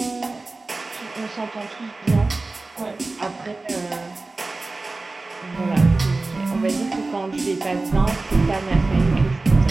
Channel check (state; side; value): quieter; left; 3.4 dB